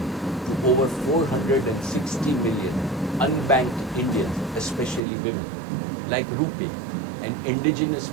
to over 460 million unbanked Indians, especially women, like RuPay, an indigenous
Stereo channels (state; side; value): drops out; left; at 5.0 s